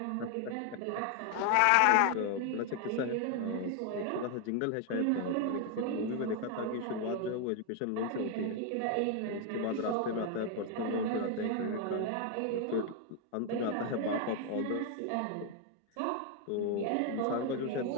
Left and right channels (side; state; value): both; different; correlation 0.01